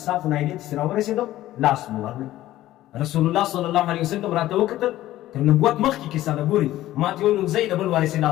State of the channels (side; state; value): right; quieter; 14.7 dB